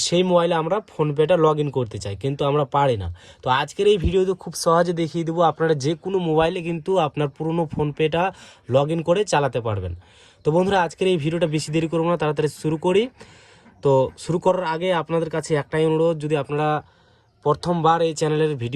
সেই মোবাইলে আমরা ফোনপেটা লগ ইন করতে চাই, কিন্তু আমরা পারি না। তো আজকের এই ভিডিওতে খুব সহজে দেখিয়ে দেবো আপনারা যে কোনো মোবাইলে কিন্তু আপনার পুরনো ফোনপেটা লগ ইন করে চালাতে পারবেন। তো বন্ধুরা আজকের এই ভিডিওটা বেশি দেরি করবো না, তাড়াতাড়ি শুরু করি। তো শুরু করার আগে আপনাদের কাছে একটাই অনুরোধ, যদি আপনারা প্রথমবার এই চ্যানেলের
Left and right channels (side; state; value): both; identical; correlation 1.00